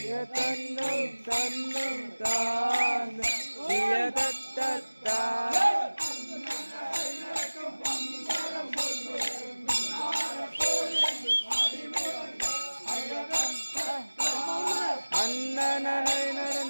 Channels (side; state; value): both; inverted; correlation -1.00